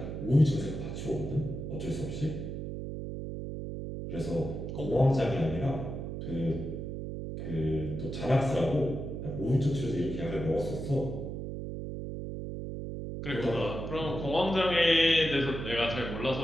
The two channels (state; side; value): noise; right; hum, 6 dB below the sound